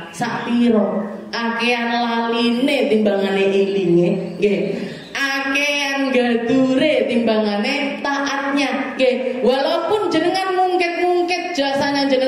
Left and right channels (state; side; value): identical; both; correlation 1.00